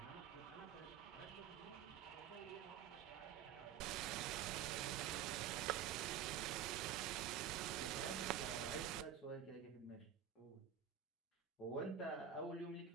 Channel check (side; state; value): left; quieter; 9.0 dB